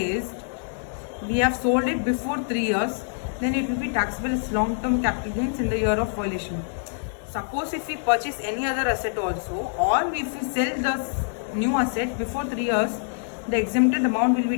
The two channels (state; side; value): silent; right; digital silence